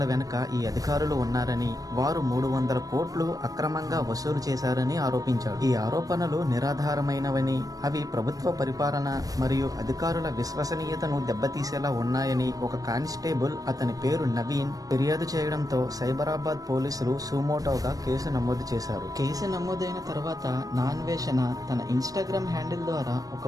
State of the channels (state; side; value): late; left; 0.18 ms